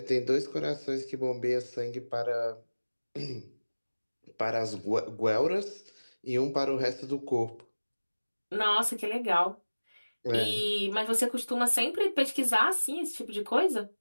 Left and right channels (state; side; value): inverted; both; correlation -1.00